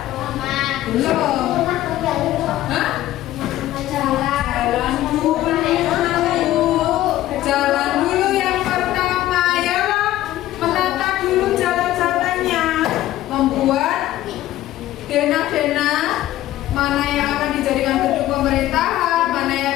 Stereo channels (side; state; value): right; quieter; 14.5 dB